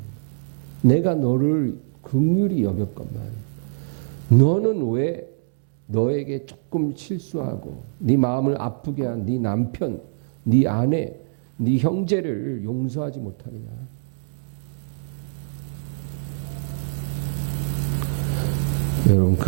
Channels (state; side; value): silent; left; digital silence